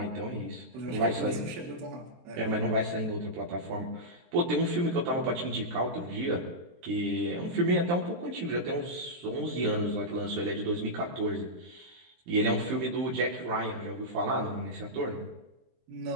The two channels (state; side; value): late; left; 23 ms